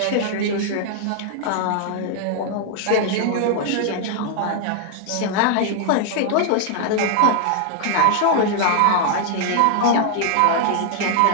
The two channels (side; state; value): both; different; correlation 0.00